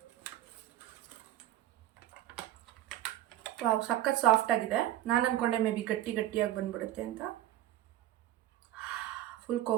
ವಾವ್, ಸಖತ್ ಸಾಫ್ಟ್ ಆಗಿದೆ. ನಾನು ಅಂದ್ಕೊಂಡೆ ಮೇ ಬಿ ಗಟ್ಟಿಯಾಗಿ ಬಂದ್ಬಿಡುತ್ತೆ ಅಂತ. ಫುಲ್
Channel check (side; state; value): left; quieter; 14.0 dB